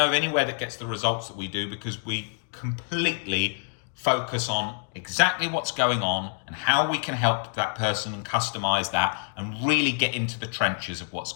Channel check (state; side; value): silent; right; 57 dB below the other